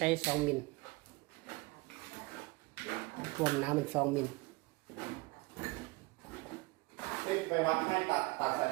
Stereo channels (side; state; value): left; quieter; 23.8 dB